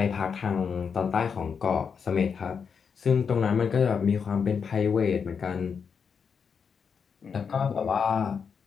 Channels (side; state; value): right; quieter; 6.3 dB